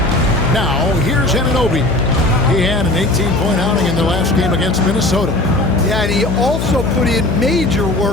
Now, here's Anunoby. He had an 18-point outing in the last game against Minnesota. Yeah, and he also put in major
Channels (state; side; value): noise; left; hum, 2 dB below the sound